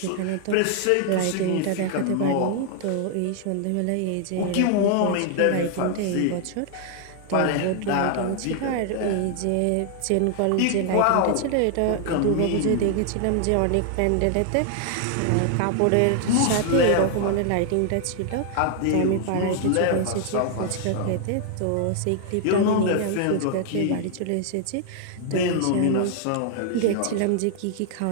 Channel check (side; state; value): both; different; correlation 0.00